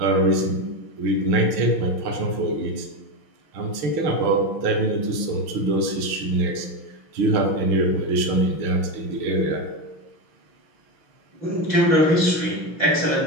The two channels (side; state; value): left; late; 6.1 ms